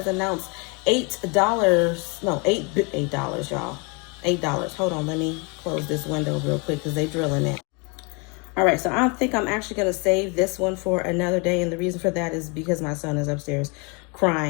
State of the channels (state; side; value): quieter; right; 31.5 dB